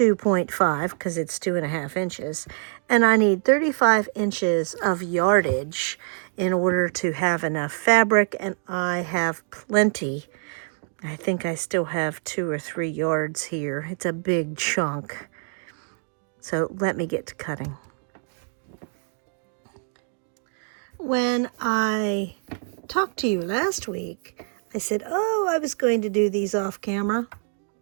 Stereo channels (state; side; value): silent; left; 59 dB below the other